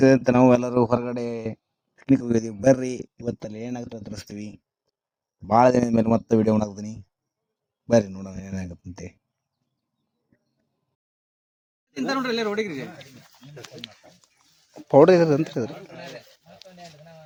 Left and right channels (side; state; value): both; identical; correlation 1.00